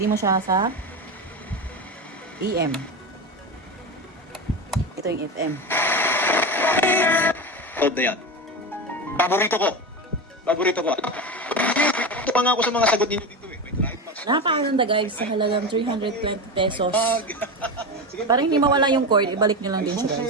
mo siya sa AM. Ito yung FM. Code na yan. Paborito ko. Ito pa nga ako sa mga sagot ninyo dito eh. Nakakaganda guys sa halagang 320 pesos. Parang hindi mawala yung cord, ibalik nyo lang din siya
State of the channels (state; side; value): normal; both; correlation 0.20